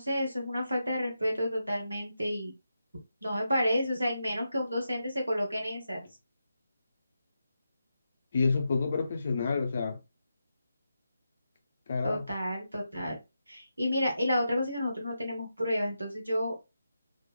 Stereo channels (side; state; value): both; inverted; correlation -0.87